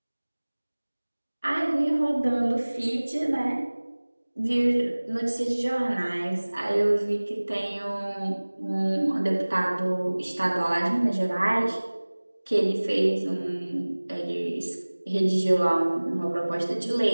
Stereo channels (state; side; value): inverted; both; correlation -1.00